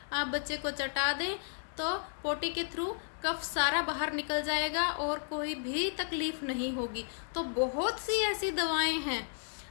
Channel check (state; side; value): silent; right; digital silence